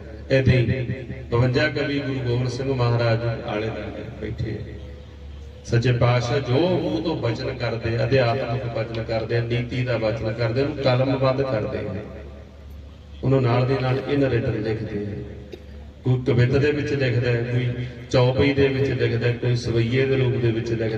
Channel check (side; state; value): both; identical; correlation 1.00